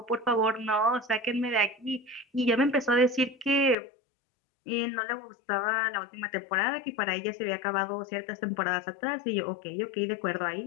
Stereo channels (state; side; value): drops out; right; at 3.8 s